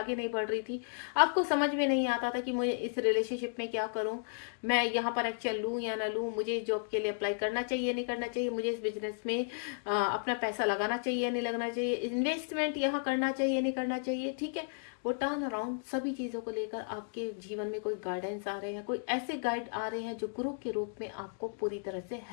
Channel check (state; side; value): silent; right; digital silence